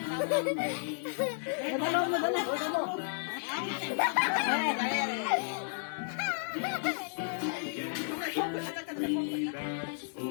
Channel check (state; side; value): silent; right; digital silence